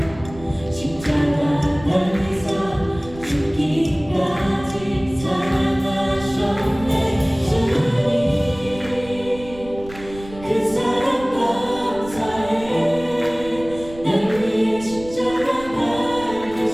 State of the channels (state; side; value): noise; right; rumble, 16 dB below the sound